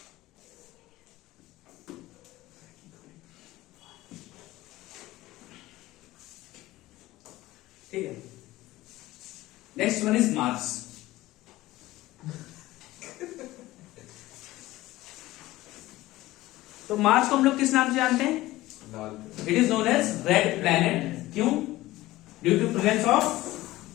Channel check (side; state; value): right; quieter; 17.4 dB